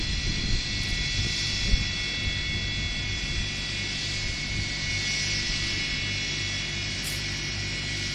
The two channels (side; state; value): both; identical; correlation 1.00